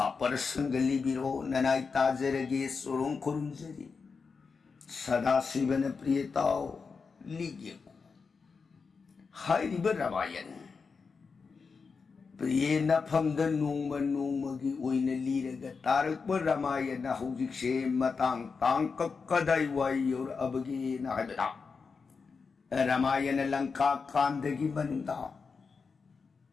parasangali biro nanai tajarage sorong kurunjari Sadasivana priyatao ligyaku Hai riba Ramayan Priye na phamda nungmagi oina liraga tarakpa Ramayan na hujikse matang tangkak kadaiway yor abagi na haibata Ramayan na langka kandagi manunda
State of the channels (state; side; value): quieter; right; 5.0 dB